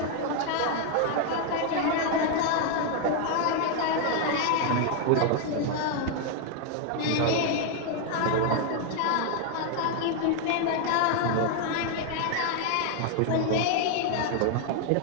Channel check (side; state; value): both; different; correlation 0.00